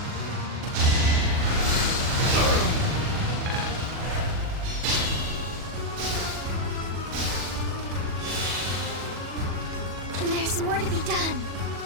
There's more to be done.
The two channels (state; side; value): late; left; 40 ms